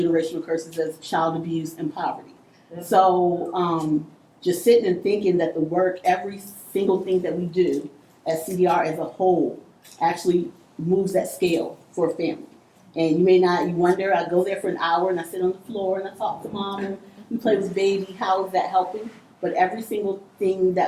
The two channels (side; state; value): both; identical; correlation 1.00